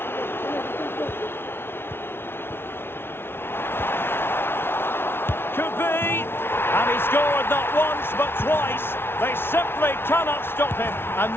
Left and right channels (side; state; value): right; late; 0.11 ms